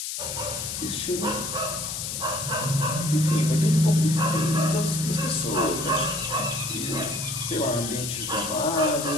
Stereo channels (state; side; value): noise; left; hiss, 4 dB below the sound